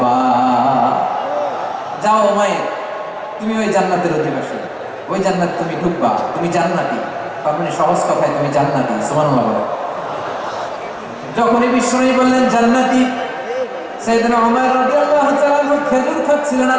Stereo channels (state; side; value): identical; both; correlation 1.00